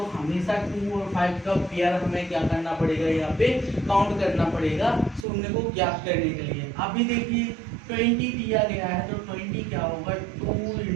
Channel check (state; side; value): drops out; left; at 5.2 s